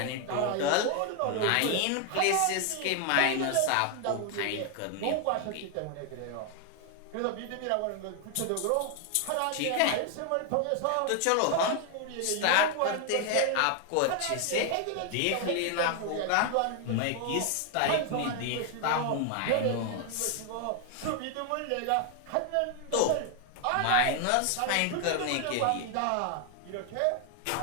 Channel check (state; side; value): different; both; correlation 0.01